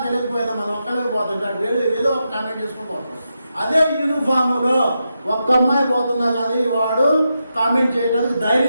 తెలియకపోయినా మనం ఒక్కలే పోతుంటాడు, వేరే ఏదో ఒక కామెంట్ చేసుకుని పోతాం. అదే యూనిఫామ్లో ఒక్క అమ్మాయి పోతున్నా కానీ వాడు కామెంట్ చేయడానికి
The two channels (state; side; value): inverted; both; correlation -0.86